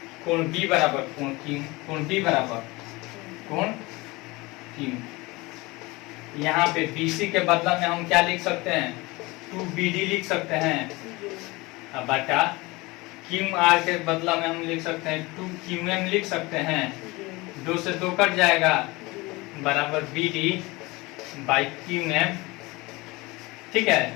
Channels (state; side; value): quieter; right; 22.9 dB